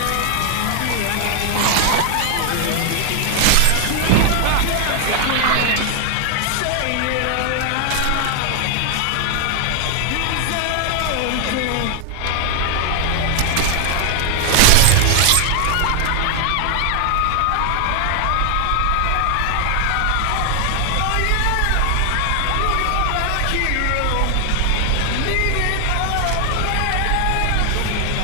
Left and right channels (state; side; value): different; both; correlation 0.00